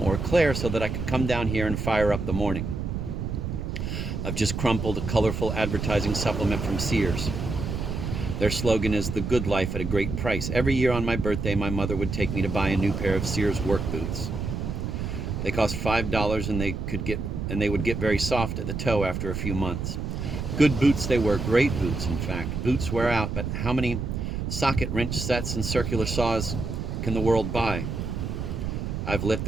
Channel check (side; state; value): right; noise; rumble, 4 dB below the sound